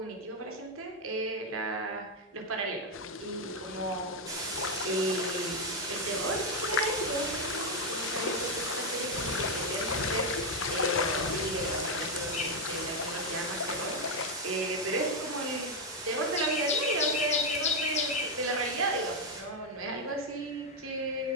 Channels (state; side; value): normal; both; correlation 0.03